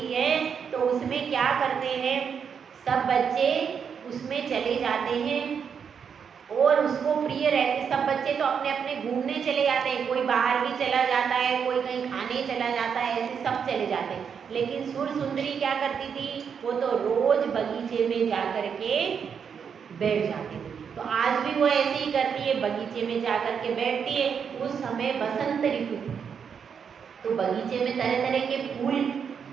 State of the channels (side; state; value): left; quieter; 7.0 dB